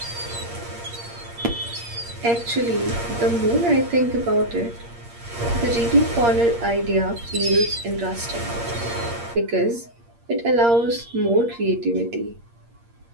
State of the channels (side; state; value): left; late; 8.6 ms